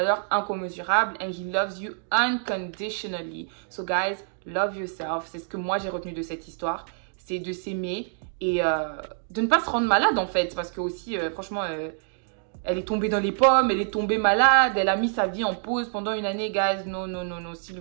incommensurable and He loves you unconditionally. So guys, love yourself. C'est ce que moi j'ai retenu de cette histoire. C'est de s'aimer et de ne pas se rendre malade en fait. Parce que aussi, franchement... elle est tombée dans les pommes, elle est tombée malade, elle a mis sa vie en pause pendant une année, guys. Non, s'il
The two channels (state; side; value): silent; left; digital silence